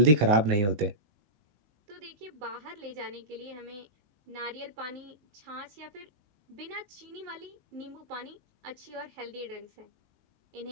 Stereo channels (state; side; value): late; left; 19 ms